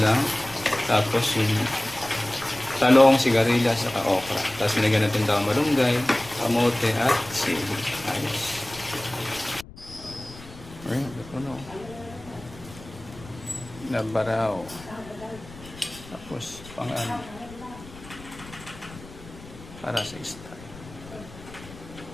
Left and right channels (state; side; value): noise; left; rumble, 18 dB below the sound